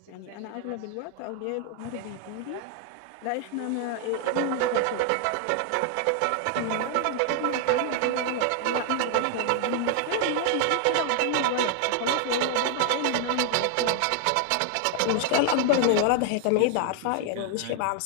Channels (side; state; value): both; different; correlation 0.00